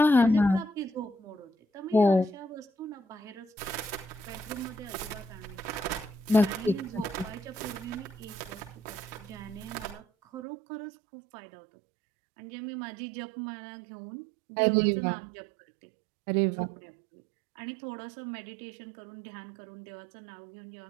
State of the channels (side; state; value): left; drops out; at 10.4 s